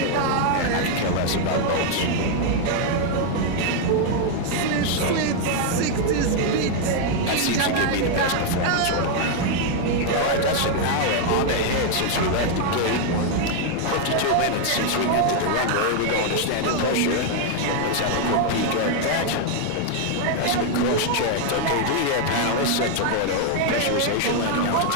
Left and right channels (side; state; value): both; different; correlation 0.00